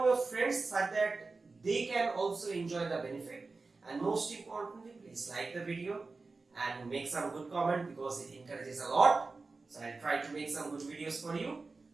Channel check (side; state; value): left; quieter; 3.9 dB